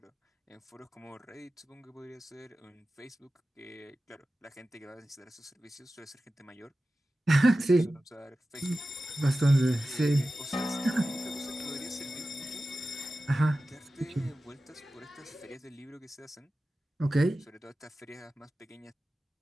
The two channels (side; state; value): both; normal; correlation 0.94